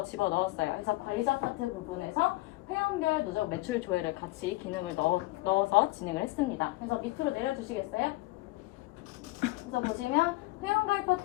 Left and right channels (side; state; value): right; quieter; 20.3 dB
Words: 집어넣었어요. 그래서 관리자 파트 부분에서 회원별 누적 매출 조회를 같이 기능을 넣어서 진행을 했습니다. 그래서 밑으로 내려주시겠어요? 그래서 보시면 회원가입